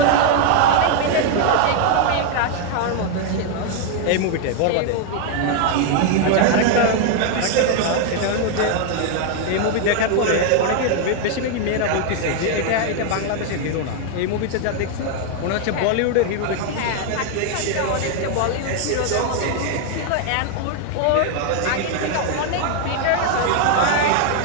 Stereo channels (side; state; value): both; different; correlation 0.00